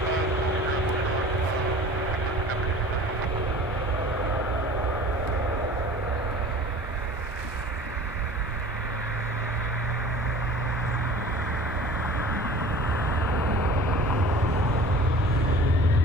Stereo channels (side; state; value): both; normal; correlation 0.43